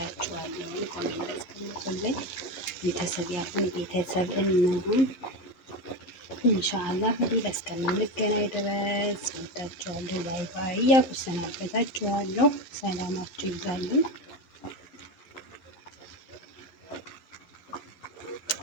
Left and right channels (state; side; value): late; right; 11 ms